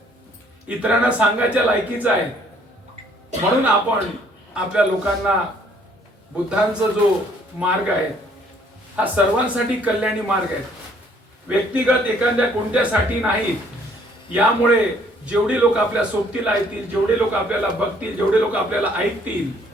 इतरांना सांगायच्या लायकीचा आहे. म्हणून आपण आपल्या लोकांना बुद्धांचा जो मार्ग आहे हा सर्वांसाठी कल्याणी मार्ग आहे, व्यक्तिगत एखाद्या कोणत्यासाठी नाही. यामुळे जेवढे लोक आपल्या सोबतीला येतील, जेवढे लोक आपल्याला बघतील, जेवढे लोक आपल्याला ऐकतील,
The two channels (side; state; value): both; normal; correlation 0.62